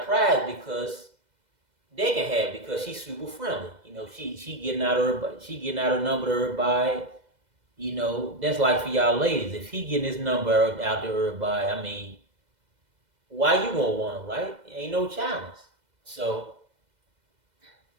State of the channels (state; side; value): late; left; 2.0 ms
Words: prize because they can have it because she's super friendly. She getting out her number to everybody. That's like for y'all ladies. If he getting his number out to everybody, I mean, why you gonna want him, right? Ain't no challenge. So